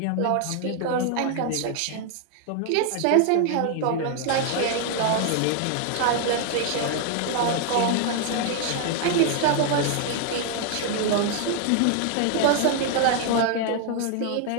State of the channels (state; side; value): different; both; correlation 0.00